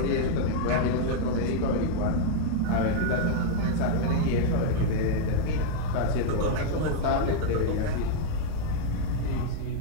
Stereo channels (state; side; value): different; both; correlation -0.01